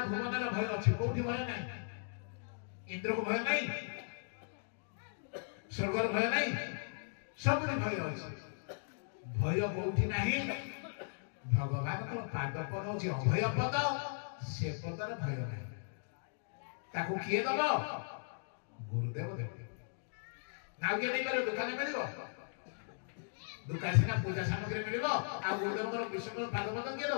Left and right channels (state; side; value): silent; right; digital silence